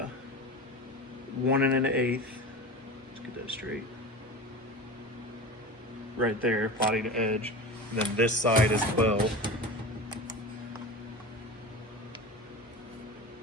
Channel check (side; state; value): both; normal; correlation 0.30